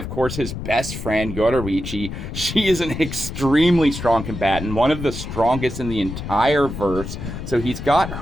course, his best friend, Yoruichi. She is an extremely strong combatant, one of the strongest in the entire verse. So he's got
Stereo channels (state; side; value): noise; left; rumble, 7 dB below the sound